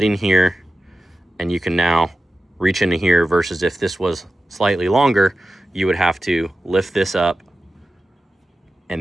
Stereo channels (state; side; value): normal; both; correlation 0.93